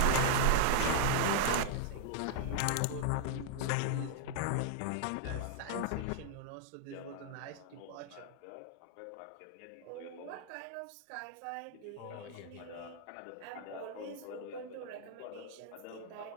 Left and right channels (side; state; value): both; different; correlation -0.01